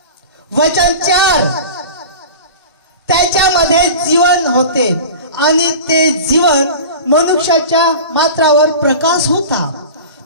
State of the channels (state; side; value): inverted; both; correlation -0.35